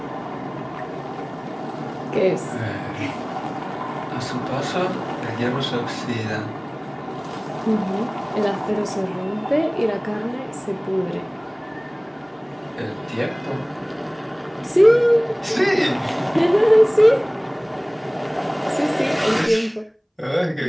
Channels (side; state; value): both; identical; correlation 1.00